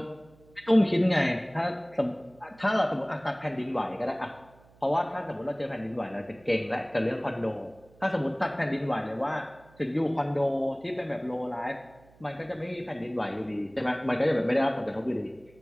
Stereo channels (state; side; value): noise; right; hum, 27 dB below the sound